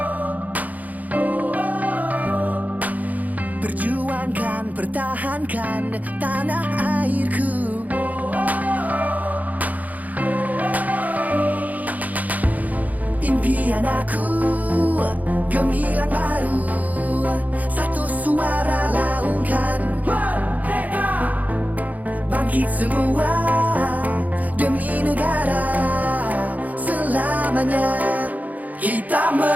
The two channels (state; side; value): late; left; 0.078 ms